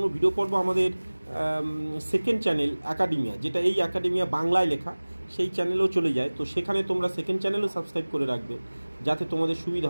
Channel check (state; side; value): inverted; both; correlation -1.00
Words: ভিডিও পড়বো আমাদের সেকেন্ড চ্যানেল অ্যাকাডেমিয়া, যেটা এই অ্যাকাডেমিয়া বাংলায় লেখা, সেই চ্যানেলেও চলে যায়, তো সেখানে তোমরা সেকেন্ড চ্যানেলও সাবস্ক্রাইব করে রাখবে যাতে তোমাদের সুবিধা